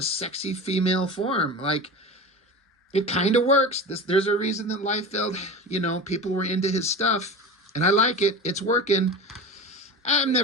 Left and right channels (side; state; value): both; normal; correlation 0.30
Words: sexy female form. Like, it kind of works. There's a reason that Liefeld, people were into his stuff, and I like it. It's working. I've